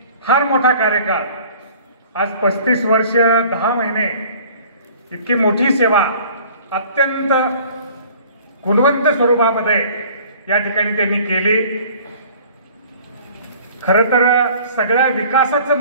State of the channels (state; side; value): inverted; both; correlation -0.50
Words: फार मोठा कार्यकाळ, आज 35 वर्ष 10 महिने इतकी मोठी सेवा अत्यंत गुणवंत स्वरूपामध्ये या ठिकाणी त्यांनी केली। खरं तर सगळ्या विकासाचं